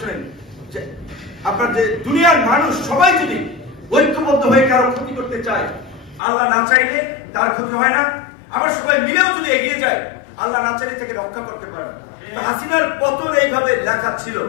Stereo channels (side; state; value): right; drops out; at 6.2 s